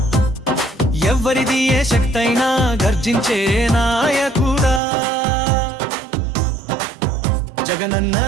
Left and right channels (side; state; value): left; drops out; at 4.8 s